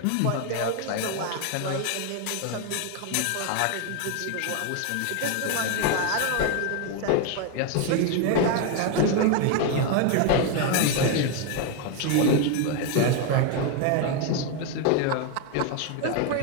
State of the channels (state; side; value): different; both; correlation 0.01